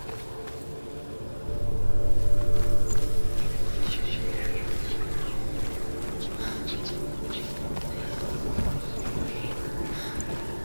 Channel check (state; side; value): inverted; both; correlation -1.00